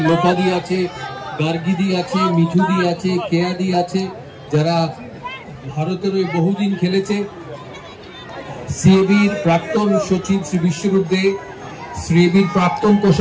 লোপাদি আছে, গার্গিদি আছে, মিঠুদি আছে, কেয়াদি আছে, যারা ভারতের হয়ে বহুদিন খেলেছে। সিএবির প্রাক্তন সচিব শ্রী বিশ্বরূপদে, সিএবির প্রাক্তন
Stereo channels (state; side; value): identical; both; correlation 1.00